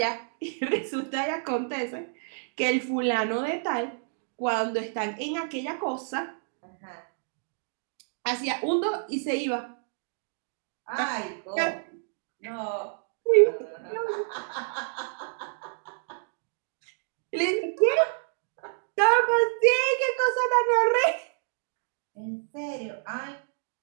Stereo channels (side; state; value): left; silent; digital silence